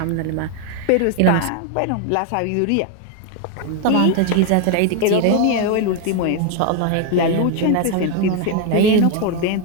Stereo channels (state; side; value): different; both; correlation 0.01